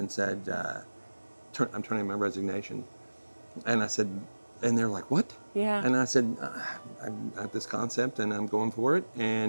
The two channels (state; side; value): inverted; both; correlation -1.00